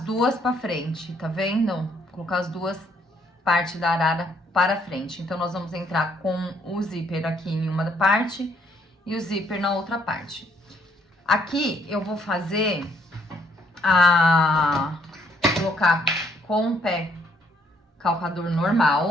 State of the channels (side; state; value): both; normal; correlation 0.68